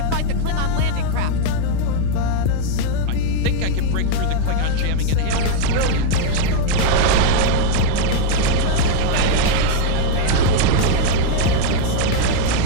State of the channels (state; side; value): different; both; correlation 0.00